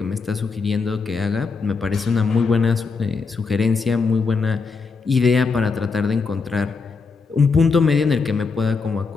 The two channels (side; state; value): right; quieter; 4.7 dB